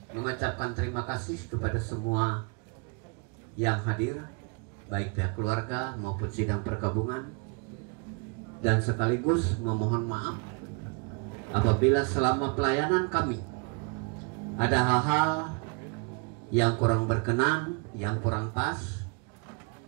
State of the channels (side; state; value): left; quieter; 34.7 dB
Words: mengucapkan terima kasih kepada semua yang hadir, baik pihak keluarga maupun sidang perkabungan, dan sekaligus memohon maaf apabila selama pelayanan kami ada hal-hal yang kurang berkenan, yang kurang pas.